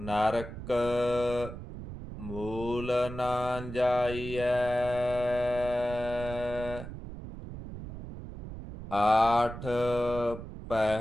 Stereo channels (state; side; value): noise; right; rumble, 10 dB below the sound